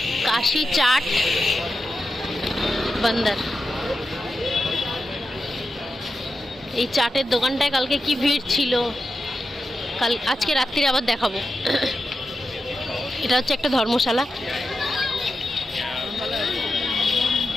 কাশি চাট বান্দার। এই চাটের দোকানটায় কালকে কি ভিড় ছিল, আজকে রাত্রিরে আবার দেখাবো। এটা হচ্ছে একটা ধর্মশালা।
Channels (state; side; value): normal; both; correlation 0.89